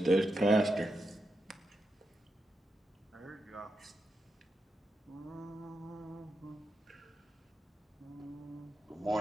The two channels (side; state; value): both; normal; correlation 0.86